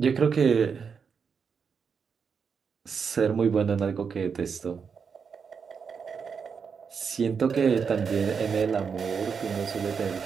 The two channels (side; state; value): left; quieter; 6.1 dB